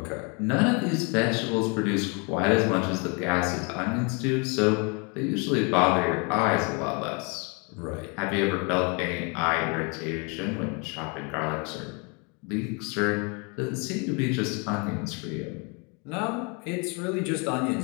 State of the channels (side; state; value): right; quieter; 33.0 dB